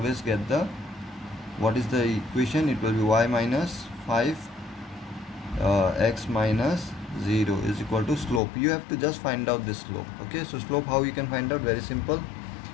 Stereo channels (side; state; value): right; drops out; at 8.4 s